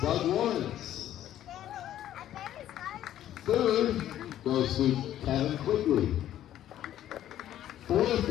Doug Lawrence. Third goes to Kevin Quigley. Fourth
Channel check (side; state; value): right; quieter; 12.0 dB